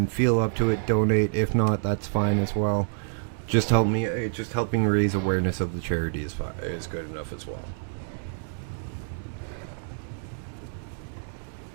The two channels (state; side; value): silent; left; digital silence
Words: feel up to it, donate. If not, that's fine as well. Just helping raise awareness of the charity is good enough as well.